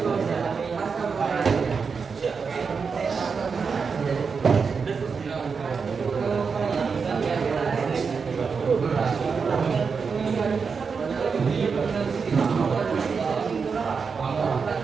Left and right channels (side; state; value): left; quieter; 5.5 dB